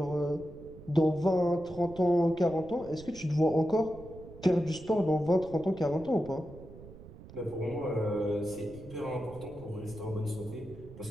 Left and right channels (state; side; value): noise; right; rumble, 17 dB below the sound